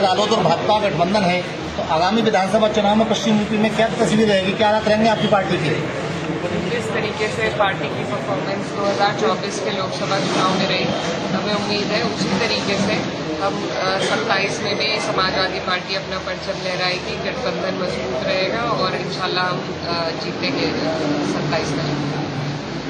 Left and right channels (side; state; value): both; identical; correlation 1.00